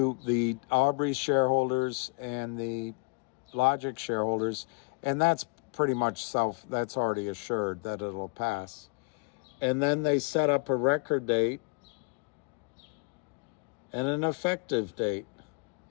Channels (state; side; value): quieter; right; 33.9 dB